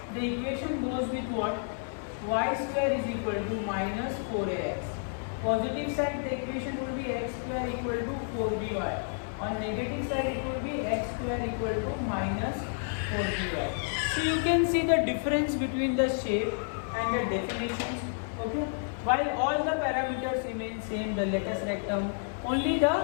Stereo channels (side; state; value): right; silent; 58 dB below the other